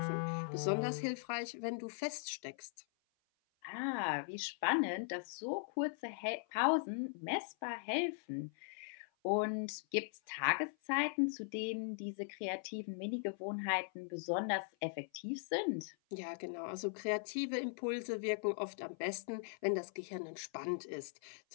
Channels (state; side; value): silent; right; 51 dB below the other